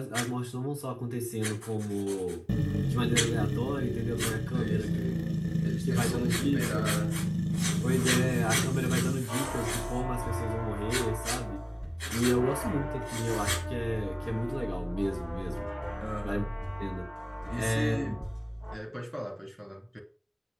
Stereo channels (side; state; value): both; identical; correlation 1.00